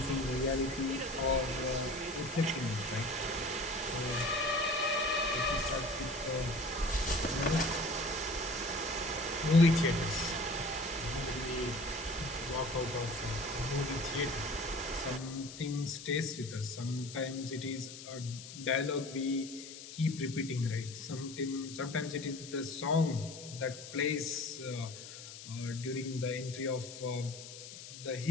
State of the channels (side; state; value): left; noise; hiss, 13 dB below the sound